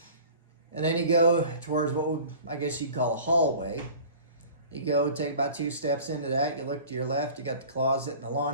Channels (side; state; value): both; inverted; correlation -0.43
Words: And then you go towards what would, I guess you'd call a hallway. You go take about 2 steps into that. You look to your left, you got the closet and the